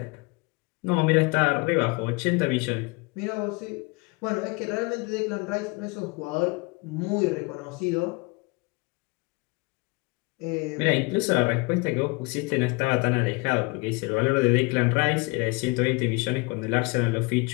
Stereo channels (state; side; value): quieter; right; 27.4 dB